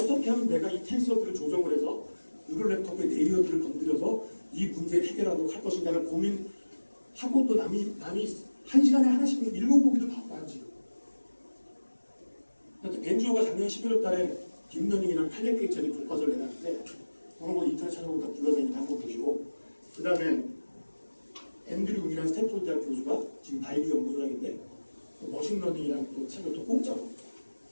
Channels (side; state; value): both; inverted; correlation -1.00